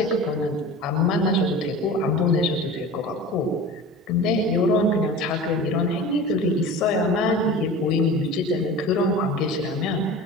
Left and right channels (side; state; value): both; normal; correlation 0.35